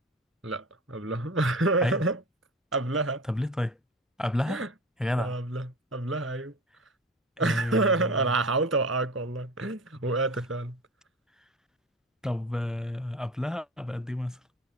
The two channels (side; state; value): both; normal; correlation 0.34